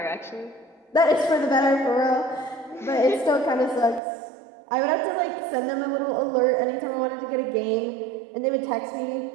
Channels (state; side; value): drops out; left; at 4.0 s